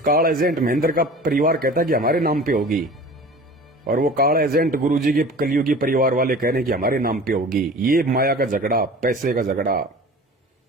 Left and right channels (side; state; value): both; normal; correlation 0.41